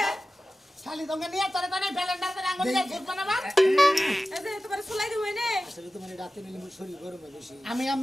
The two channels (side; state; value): both; normal; correlation 0.95